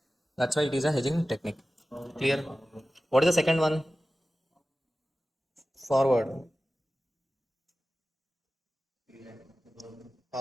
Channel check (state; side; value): normal; both; correlation 0.95